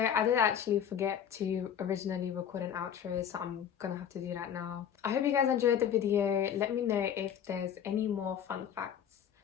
did actually forget to originally record an outro, so I'm gonna have to do that now. I hope you guys enjoyed the video. Let me know if there's any more fun facts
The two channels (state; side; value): quieter; right; 8.8 dB